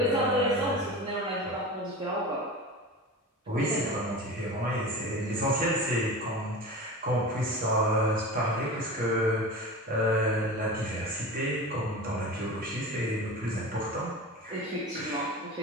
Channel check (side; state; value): both; normal; correlation 0.31